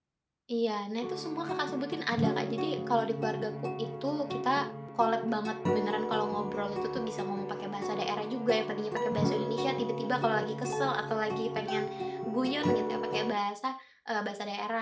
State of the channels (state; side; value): identical; both; correlation 1.00